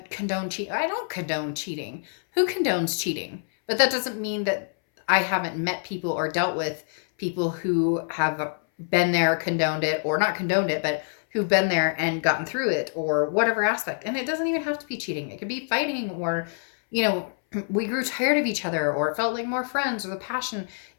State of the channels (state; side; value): silent; right; 61 dB below the other